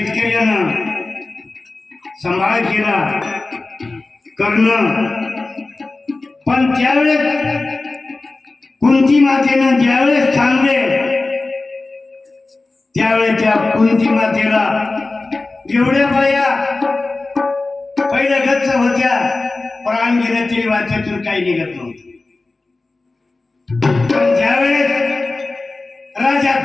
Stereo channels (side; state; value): right; quieter; 3.4 dB